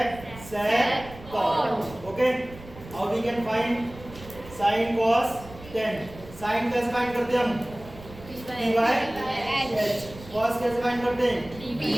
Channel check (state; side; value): noise; right; rumble, 17 dB below the sound